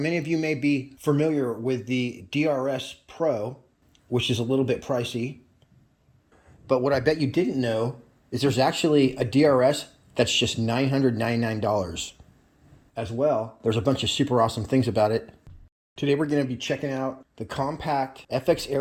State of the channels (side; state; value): both; identical; correlation 1.00